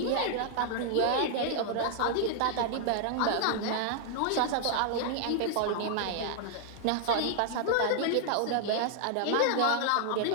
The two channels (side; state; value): both; different; correlation 0.00